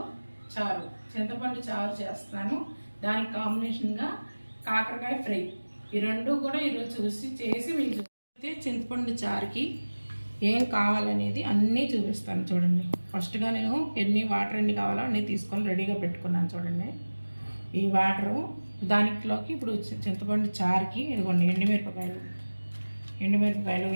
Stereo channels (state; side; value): inverted; both; correlation -1.00